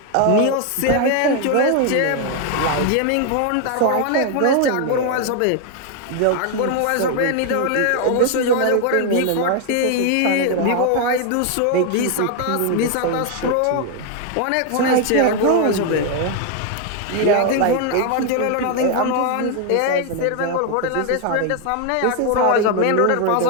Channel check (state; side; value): different; both; correlation 0.00